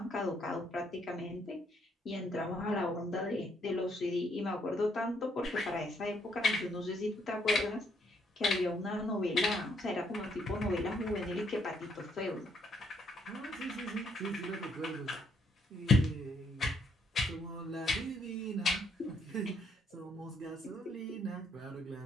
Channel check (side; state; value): both; normal; correlation 0.71